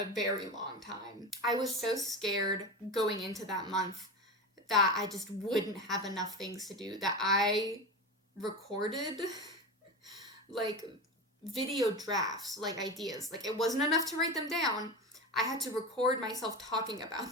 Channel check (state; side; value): normal; both; correlation 0.24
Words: very long time. I was so scared going into that month that I just wouldn't have enough things to do, that I recorded like video drafts, like ideas. Like, it wasn't enough to write them down. I had to record myself talking about